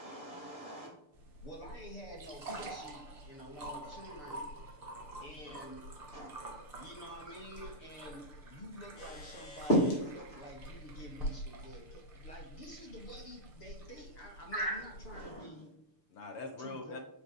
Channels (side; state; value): right; late; 6.8 ms